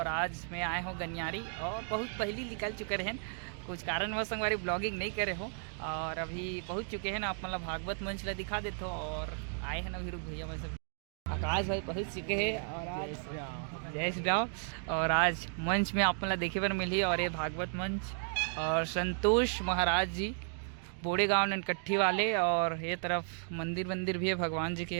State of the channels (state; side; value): silent; left; 55 dB below the other